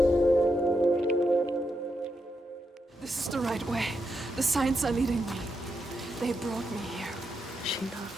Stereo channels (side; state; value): both; normal; correlation 0.83